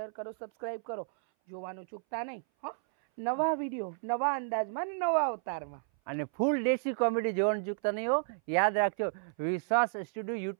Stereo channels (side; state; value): left; silent; 56 dB below the other